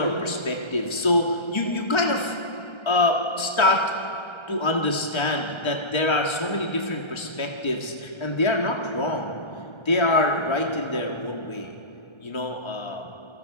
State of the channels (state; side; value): late; right; 1.3 ms